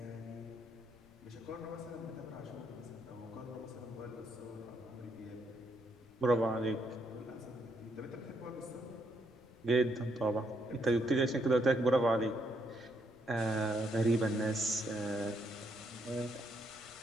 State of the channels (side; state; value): left; noise; rumble, 27 dB below the sound